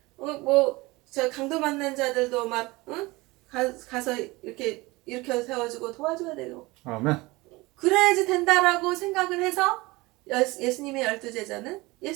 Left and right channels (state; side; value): quieter; left; 22.2 dB